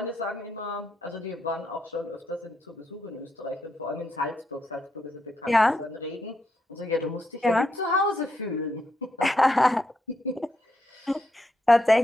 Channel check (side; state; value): both; normal; correlation 0.80